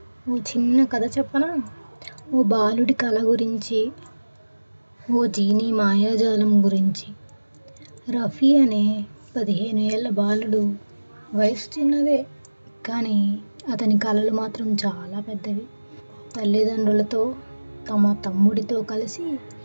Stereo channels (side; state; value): both; inverted; correlation -1.00